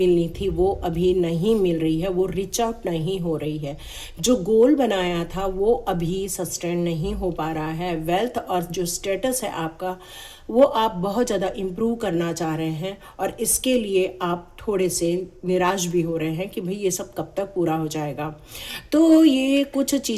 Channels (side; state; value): both; identical; correlation 1.00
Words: थी वो अभी नहीं मिल रही है, वो रिच आउट नहीं हो रही है। जो गोल बनाया था वो अभी सस्टेन नहीं हो पा रहा है। वेल्थ और जो स्टेटस है आपका वो आप बहुत ज़्यादा इम्प्रूव करना चाह रहे हैं, और इसके लिए आप थोड़े से निराश भी हो रहे हैं कि भाई ये सब कब तक पूरा हो जाएगा। तो ये कुछ